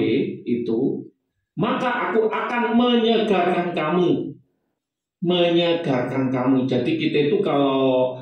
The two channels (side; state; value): both; identical; correlation 1.00